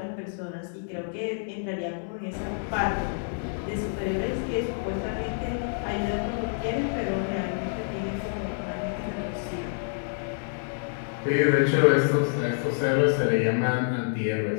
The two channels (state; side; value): silent; right; digital silence